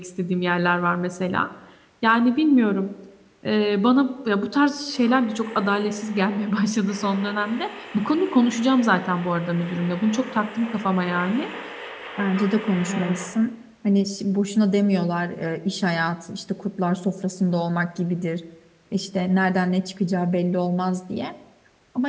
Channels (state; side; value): identical; both; correlation 1.00